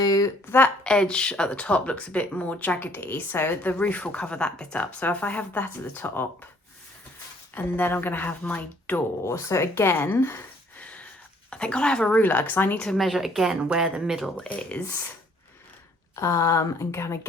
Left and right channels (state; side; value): normal; both; correlation 0.61